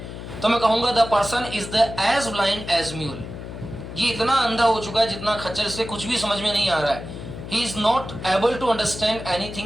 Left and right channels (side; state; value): left; noise; hum, 10 dB below the sound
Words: तो मैं कहूंगा the person is the as blind as mule. ये इतना अंधा हो चुका है जितना खच्चर, से कुछ भी समझ में नहीं आ रहा है. He is not able to understand